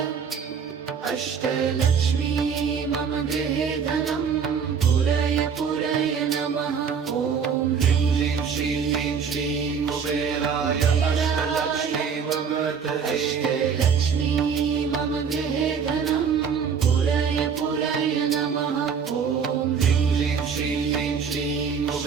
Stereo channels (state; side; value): quieter; left; 6.6 dB